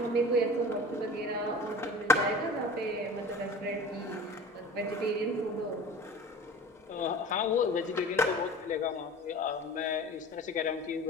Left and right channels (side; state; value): both; normal; correlation 0.38